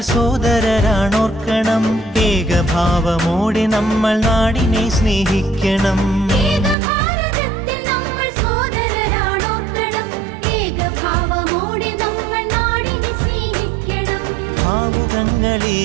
സോദരരാണോർക്കണം, ഏകഭാവമോടെ നമ്മൾ നാടിനെ സ്നേഹിക്കണം.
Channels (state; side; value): drops out; left; at 6.8 s